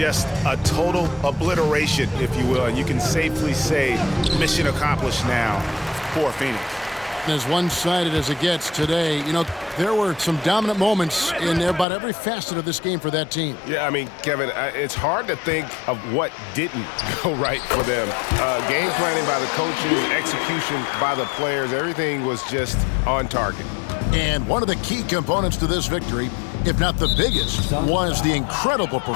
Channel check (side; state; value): right; drops out; at 11.9 s